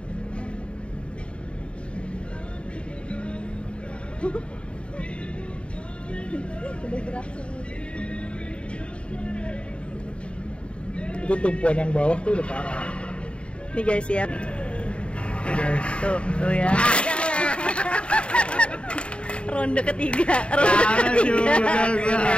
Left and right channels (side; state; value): right; late; 0.058 ms